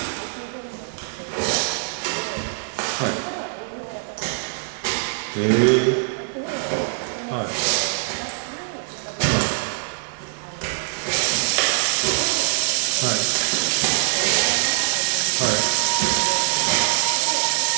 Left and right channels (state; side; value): silent; left; digital silence